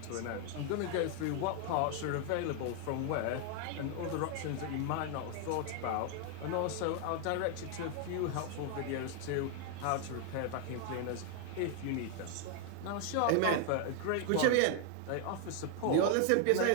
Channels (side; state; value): both; different; correlation 0.00